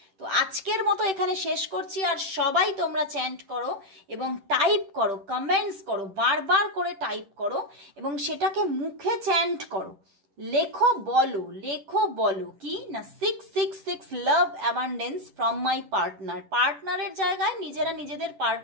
তো আজকের মতো এখানে শেষ করছি। আর সবাই তোমরা চ্যান্ট করো এবং টাইপ করো, কমেন্টস করো, বারবার করে টাইপ করো এবং সেটাকে মুখে চ্যান্ট করো, লেখো বলো কি না 666 লাভ অ্যাবান্ডেন্স ফ্রম মাই পার্টনারের জায়গায় নিজেরা নিজেদের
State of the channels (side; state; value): left; late; 10 ms